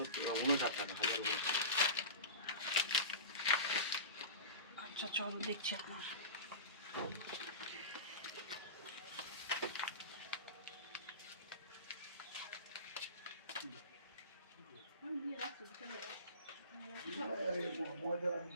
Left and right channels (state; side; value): inverted; both; correlation -0.31